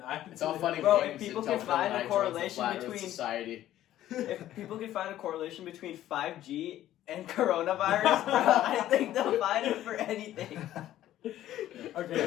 It's all funny Bro, games if people until can find a Phil Knight joins the correlation Flat Earth between- society. If people can find a correlation between 5G and coronavirus, bro, I think they'll find it for anything.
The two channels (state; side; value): quieter; right; 13.1 dB